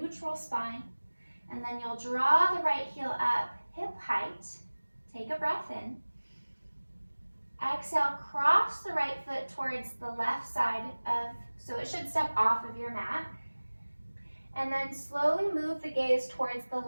spine. And then you'll draw the right heel up, hip height. Take a breath in. Exhale, cross the right foot towards the left side so it should step off of your mat. And then slowly move the gaze towards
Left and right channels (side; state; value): both; inverted; correlation -1.00